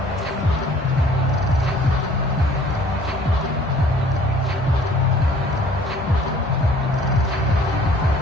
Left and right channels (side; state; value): both; normal; correlation 0.54